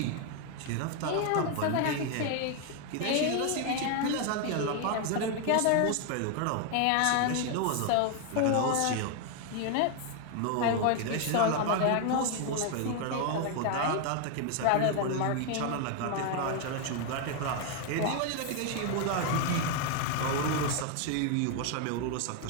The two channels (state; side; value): different; both; correlation 0.01